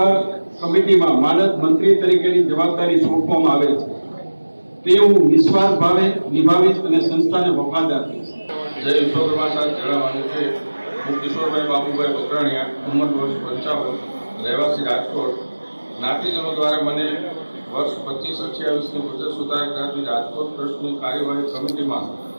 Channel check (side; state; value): both; inverted; correlation -1.00